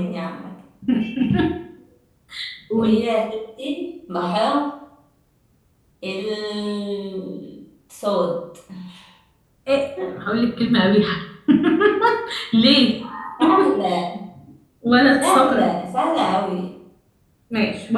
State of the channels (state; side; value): identical; both; correlation 1.00